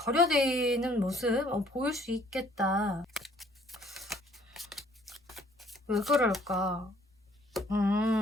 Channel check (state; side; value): normal; both; correlation 0.60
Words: 모습 보일 수 있겠다. 왜 그럴까?